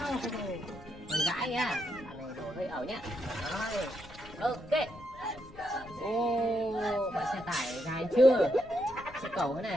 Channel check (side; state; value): left; noise; rumble, 19 dB below the sound